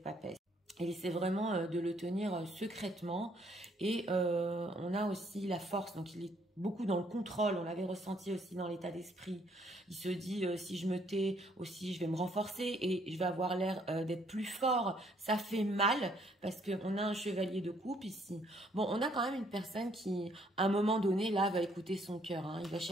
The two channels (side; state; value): both; normal; correlation 0.66